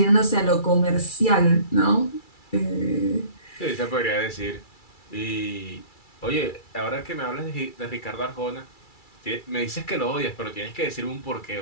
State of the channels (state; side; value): late; right; 2.3 ms